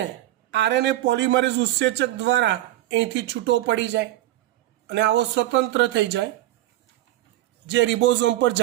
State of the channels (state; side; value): quieter; left; 15.2 dB